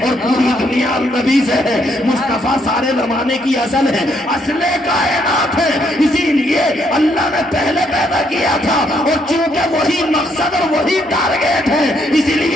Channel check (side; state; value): both; normal; correlation 0.72